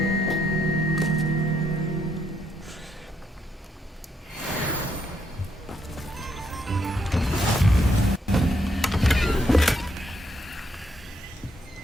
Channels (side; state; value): both; normal; correlation 0.75